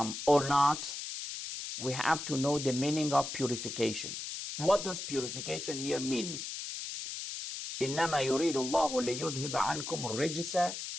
or not, we have to know the meaning of purification. What does purification here mean? إنما يريد الله ليذهب عنكم الرجس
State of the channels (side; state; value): left; noise; hiss, 6 dB below the sound